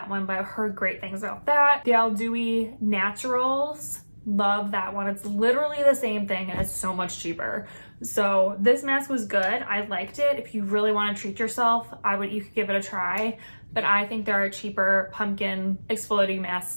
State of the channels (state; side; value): inverted; both; correlation -1.00